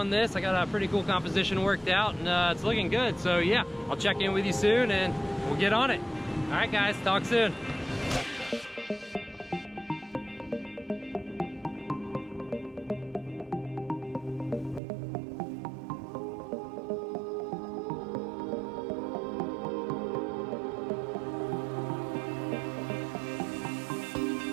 this. I got a pretty cool composition worked out, and it's looking good. So yeah, I'll check in with you soon and we'll get on it. All right guys, talk soon.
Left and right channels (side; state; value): left; drops out; at 14.8 s